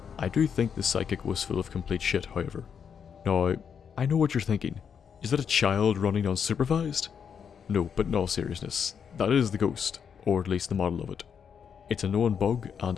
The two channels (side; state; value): right; quieter; 7.2 dB